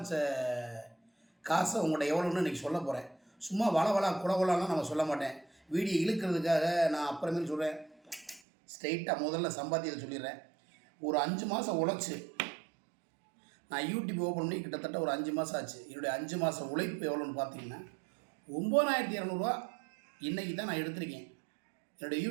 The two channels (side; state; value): left; drops out; at 8.4 s